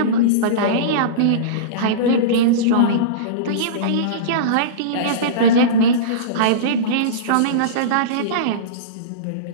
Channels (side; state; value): both; different; correlation -0.06